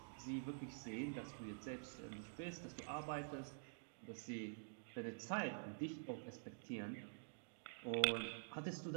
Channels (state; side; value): silent; left; digital silence